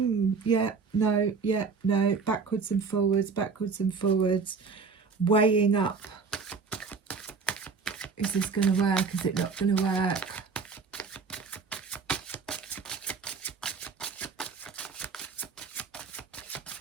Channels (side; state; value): left; quieter; 5.0 dB